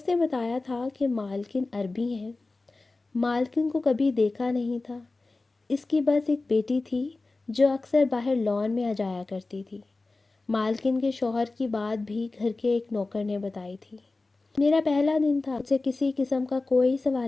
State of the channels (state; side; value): quieter; right; 3.4 dB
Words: نے بتایا تھا کہ مالکن عربی ہیں۔ مالکن کو کبھی دیکھا نہیں تھا۔ اس کی بس ایک بیٹی تھی جو اکثر باہر لان میں آ جایا کرتی تھی۔ مالکن کے شوہر کی بات بھی گھر کے ایک نوکر نے بتائی تھی۔ میرا پہلا دن تھا، مجھ سے کسی قسم کا کوئی